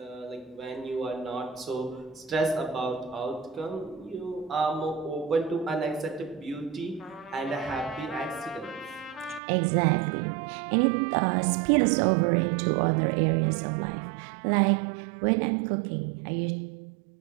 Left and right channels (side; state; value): left; drops out; at 9.4 s